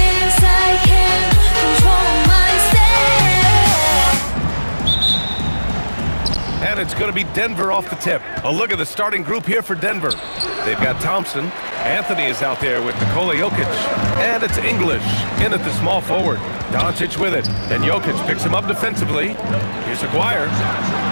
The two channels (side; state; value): both; inverted; correlation -1.00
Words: I can't control myself. And it's going to be Denver off the tip. A look at the starting group here for Denver. They've got Thompson. Anthony is out there with Nikola Jokic. And it's English in at the small forward. Doncic with it. And Jokic picks him up defensively. Here's Aguirre.